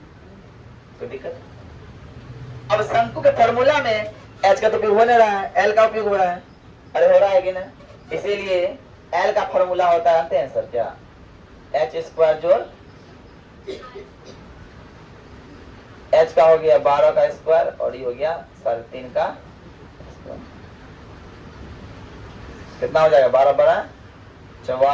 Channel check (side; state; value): both; identical; correlation 1.00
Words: कोई दिक्कत? अब शंकु के फॉर्मूला में H का तो उपयोग हो नहीं रहा है, L का उपयोग हो रहा है। अरे हो रहा है कि ना? इसीलिए L का फॉर्मूला होता है, जानते हैं सर क्या? h² जोड़ H का हो गया 12 का स्क्वायर और ये हो गया 3.5 का स्क्वायर। कितना हो जाएगा? 12 बड़ा